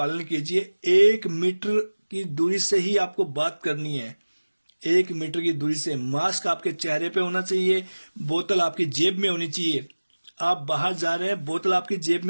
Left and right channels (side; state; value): both; inverted; correlation -1.00